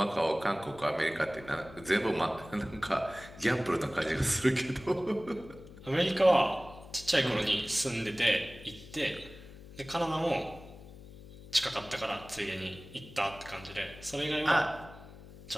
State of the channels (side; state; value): left; noise; hum, 18 dB below the sound